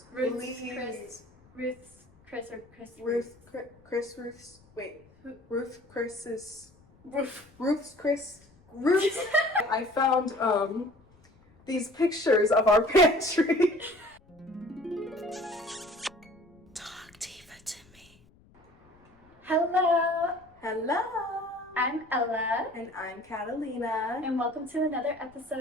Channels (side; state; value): left; noise; rumble, 29 dB below the sound